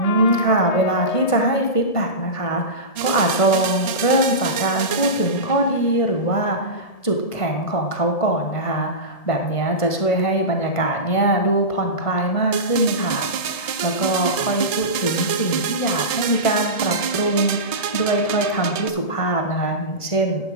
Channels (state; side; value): late; right; 1.7 ms